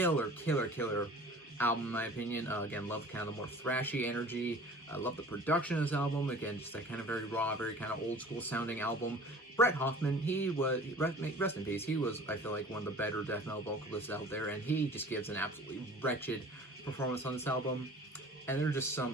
album in my opinion. Again, love kind of the more thrashy energy. I love the production of this album. Again, just that kind of very raw, very kind of old school sounding album. Brett Hoffman, he was, rest in peace, he was, I feel like, one of the better death metal vocalists out there, and he just gives an absolutely wretched performance on this album. And there are just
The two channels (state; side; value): normal; both; correlation 0.45